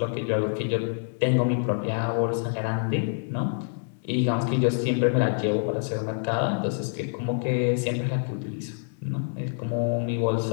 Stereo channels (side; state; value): right; silent; digital silence